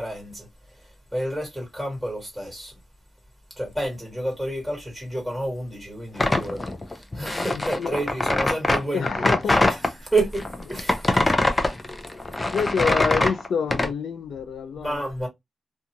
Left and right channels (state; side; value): normal; both; correlation 0.91